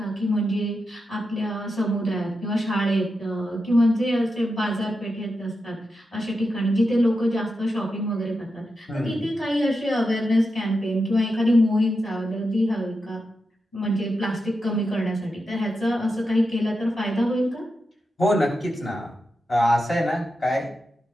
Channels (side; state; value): both; normal; correlation 0.88